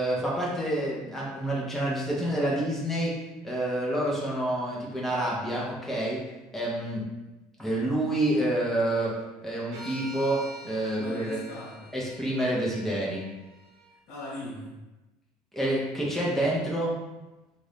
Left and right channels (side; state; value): both; normal; correlation 0.66